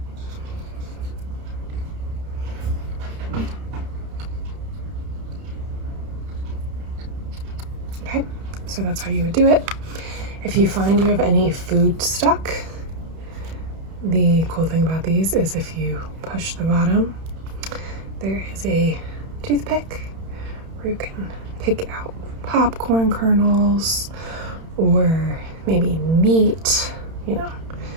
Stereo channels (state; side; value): late; left; 31 ms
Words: Okay, so that's how you would do it. If you find you have any food stuck, the cool thing about these is if you push the bottom, there is a toothpick where you can pick out popcorn kernels or maybe meat, you know,